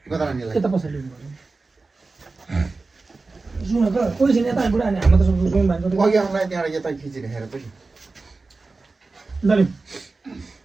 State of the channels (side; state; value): left; quieter; 3.7 dB